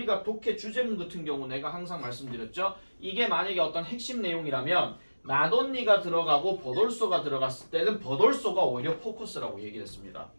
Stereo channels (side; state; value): both; inverted; correlation -1.00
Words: 독해 주제문 같은 경우 내가 항상 말씀드렸죠. 이게 만약에 어떤 핵심 내용이라면 not only가 들어가고 but also가 들어갔을 때는 but also가 오히려 포커스라고 얘기했습니다.